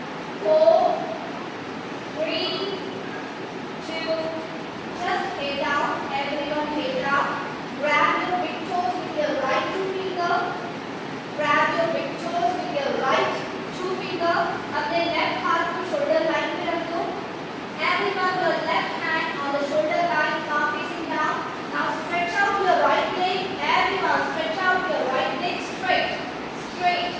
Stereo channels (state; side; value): identical; both; correlation 1.00